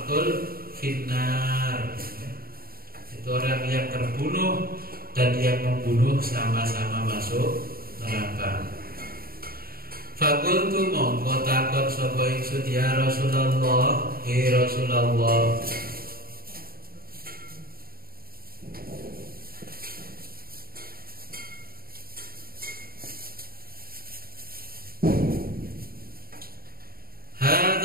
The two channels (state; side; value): late; left; 0.43 ms